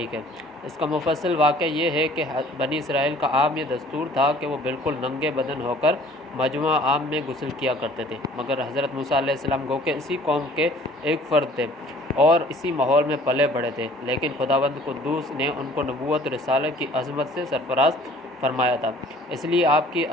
ہے۔ اس کا مفصل واقعہ یہ ہے کہ بنی اسرائیل کا عام یہ دستور تھا کہ وہ بالکل ننگے بدن ہو کر مجمع عام میں غسل کیا کرتے تھے، مگر حضرت موسیٰ علیہ السلام گو کہ اسی قوم کے ایک فرد تھے اور اسی ماحول میں پلے بڑھے تھے، لیکن خداوند قدوس نے ان کو نبوت رسالت کی عظمت سے سرفراز فرمایا تھا۔ اس لیے آپ کی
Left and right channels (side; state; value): both; normal; correlation 0.52